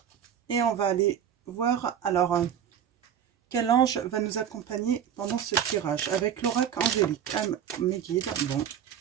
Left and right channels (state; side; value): quieter; left; 9.0 dB